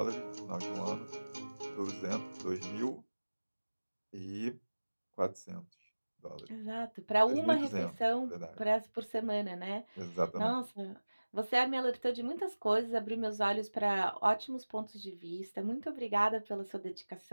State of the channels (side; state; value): both; inverted; correlation -1.00